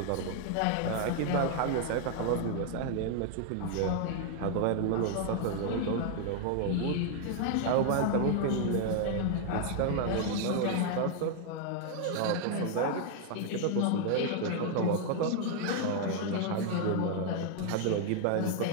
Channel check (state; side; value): different; both; correlation 0.00